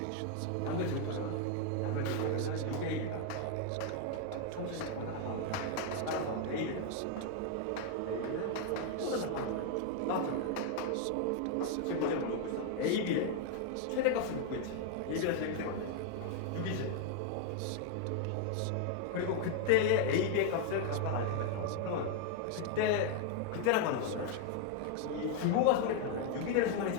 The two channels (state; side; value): different; both; correlation 0.00